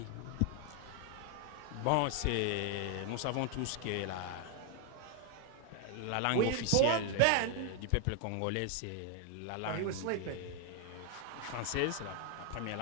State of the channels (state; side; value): different; both; correlation 0.00